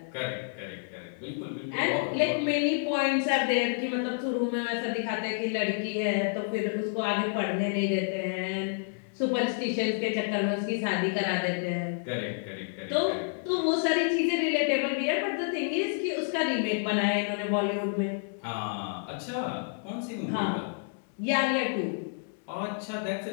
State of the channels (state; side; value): silent; right; digital silence